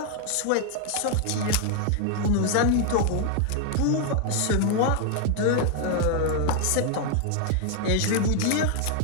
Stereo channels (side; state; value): both; different; correlation 0.00